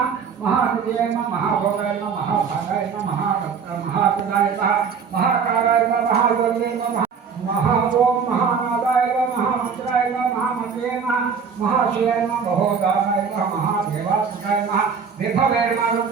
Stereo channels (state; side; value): quieter; left; 6.3 dB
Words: महाहृदये नमः महाभोगाय नमः महाभागाय नमः महाप्रदाय नमः महाकाराय नमः महायोगे नमः महाओम महानादाय नमः महामंत्राय नमः महामते नमः महाशिवाय नमः महोदानाय नमः महादेवात्मकाय नमः विभवे नमः